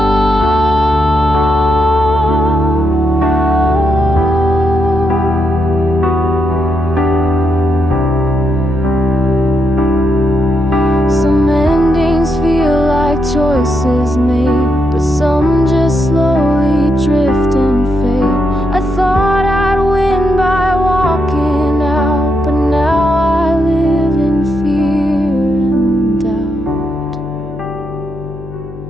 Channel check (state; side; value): noise; left; hum, 15 dB below the sound